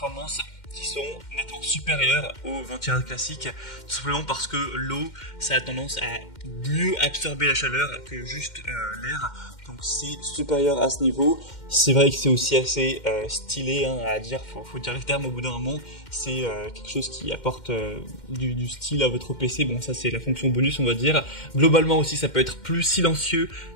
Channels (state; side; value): late; right; 2.1 ms